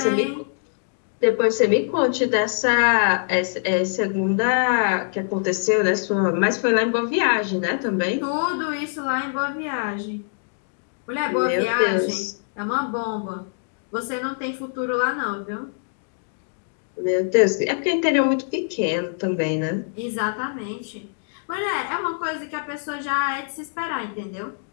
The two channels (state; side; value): silent; right; digital silence